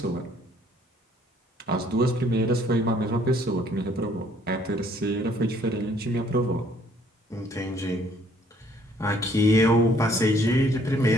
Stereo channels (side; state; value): both; normal; correlation 0.62